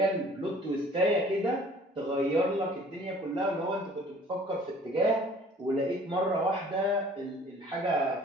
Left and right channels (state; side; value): normal; both; correlation 0.51